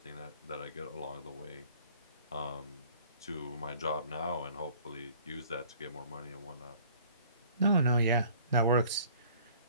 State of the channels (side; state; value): both; inverted; correlation -0.53